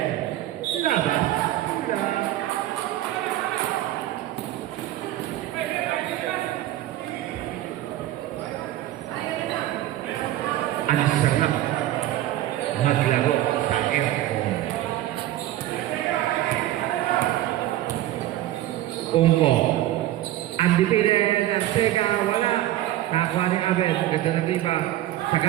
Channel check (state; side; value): quieter; left; 14.1 dB